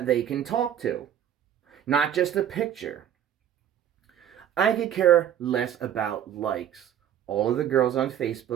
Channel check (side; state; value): left; quieter; 10.0 dB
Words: they can talk to, not just a picture. I could care less about likes. All of the girls on